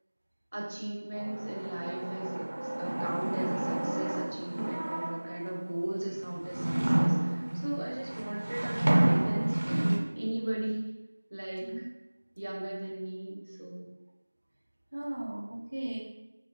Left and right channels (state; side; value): inverted; both; correlation -1.00